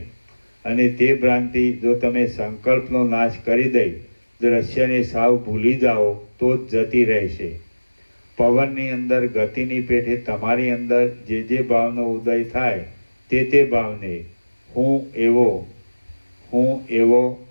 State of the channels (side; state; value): both; inverted; correlation -1.00